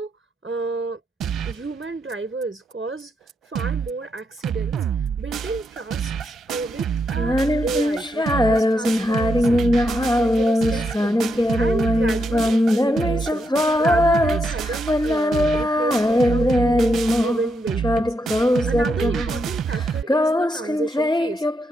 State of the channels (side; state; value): both; normal; correlation 0.81